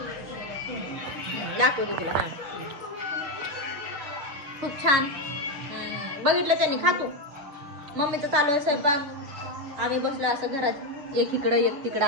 दाखवते तुला. हा खूप छान बघितलं त्यांनी. खातो मम्मीचं चालू आहे स्वयंपाक. आम्ही बसलो असं घरात एक इकडं एक तिकडं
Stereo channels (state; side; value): late; left; 7.4 ms